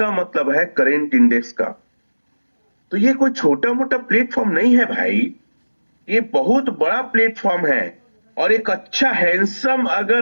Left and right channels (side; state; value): both; inverted; correlation -1.00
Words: मतलब है करेंट इंडेक्स का। तो ये कोई छोटा मोटा प्लेटफॉर्म नहीं है भाई, ये बहुत बड़ा प्लेटफॉर्म है। और एक अच्छा हैंडसम